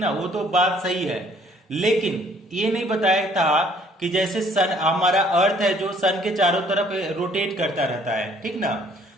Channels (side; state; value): both; normal; correlation 0.60